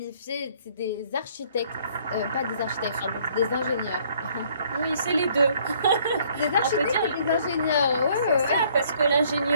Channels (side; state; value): both; inverted; correlation -0.61